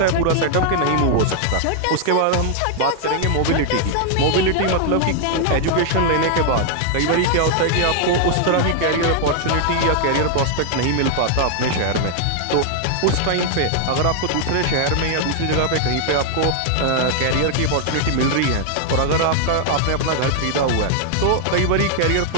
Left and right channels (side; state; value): both; different; correlation 0.00